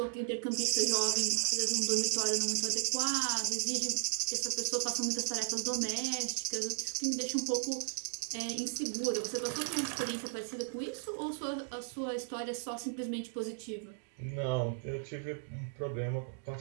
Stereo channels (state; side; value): silent; left; digital silence